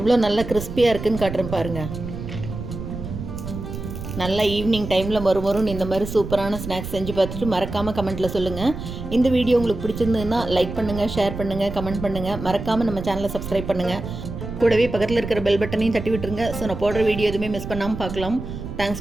நல்லா கிறிஸ்பியாக இருக்குன்னு காட்டுறேன் பாருங்கள். நல்லா ஈவினிங் டைமில் மறுமறுன்னு இந்த மாதிரி சூப்பரான ஸ்நாக்ஸ் செஞ்சு பார்த்துட்டு மறக்காமல் கமெண்ட்டில் சொல்லுங்கள். இந்த வீடியோ உங்களுக்கு பிடிச்சிருந்ததுன்னா லைக் பண்ணுங்கள், ஷேர் பண்ணுங்கள், கமெண்ட் பண்ணுங்கள். மறக்காமல் நம்ம சேனலை சப்ஸ்கிரைப் பண்ணுங்கள். கூடவே பக்கத்தில் இருக்கிற பெல் பட்டனையும் தட்டி விட்டுருங்க. ஸோ நான் போடுற வீடியோ எதுவுமே மிஸ் பண்ணாமல் பார்க்கலாம்.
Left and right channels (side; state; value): right; noise; rumble, 8 dB below the sound